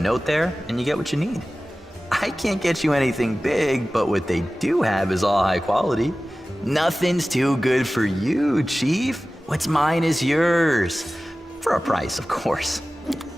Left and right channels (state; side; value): normal; both; correlation 0.96